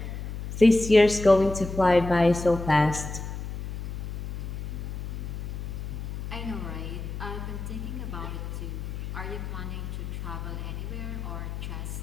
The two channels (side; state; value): left; noise; hum, 6 dB below the sound